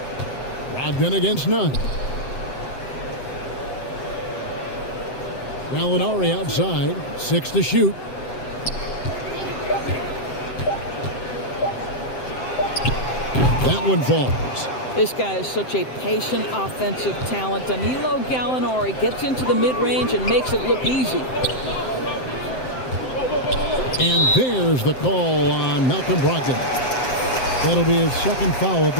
Brogdon against Nunn. Gallinari outside. 6 to shoot. That one falls. This guy is such a patient offensive talent. Danilo Gallinari gets into the mid-range and makes it look easy. And there's the call on Malcolm Brogdon. That'll be his 2nd foul of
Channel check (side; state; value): right; late; 7.7 ms